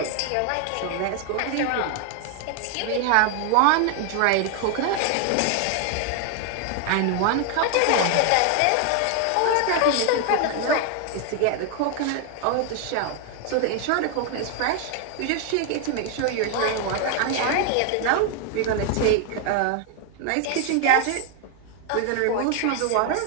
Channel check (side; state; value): both; different; correlation 0.00